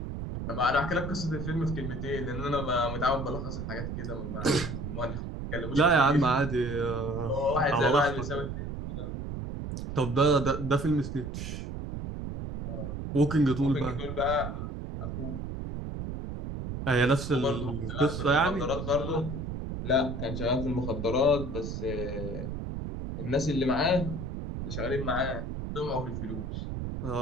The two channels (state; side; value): noise; right; rumble, 5 dB below the sound